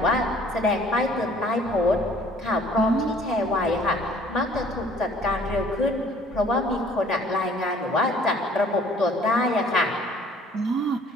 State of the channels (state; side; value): normal; both; correlation 0.55